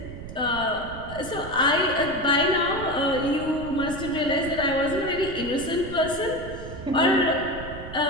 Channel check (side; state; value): right; noise; rumble, 11 dB below the sound